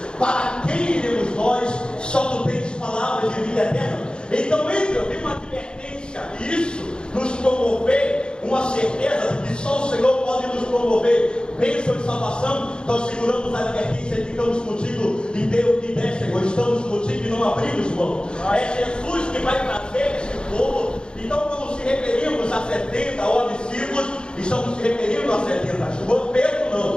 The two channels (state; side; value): late; right; 0.050 ms